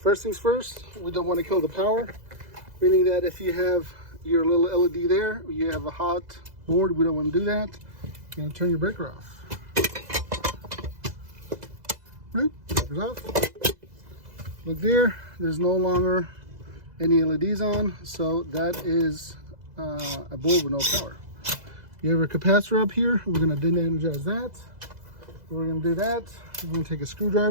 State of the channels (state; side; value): late; left; 2.0 ms